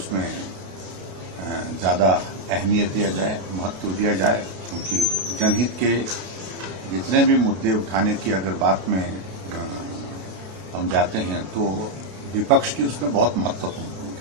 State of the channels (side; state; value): left; late; 32 ms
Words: ज्यादा अहमियत दिया जाए, महत्व दिया जाए, क्योंकि जनहित के जितने भी मुद्दे उठाने की अगर बात में हम जाते हैं तो विपक्ष की उसमें बहुत महत्वपूर्ण